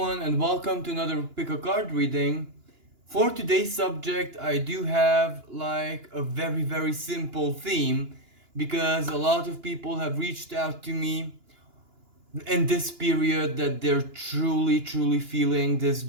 and welcome to another pick a card reading. For today's subject, I do have like a very simple theme because a lot of people have reached out to me in this period that they're truly feeling this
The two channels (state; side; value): late; left; 2.9 ms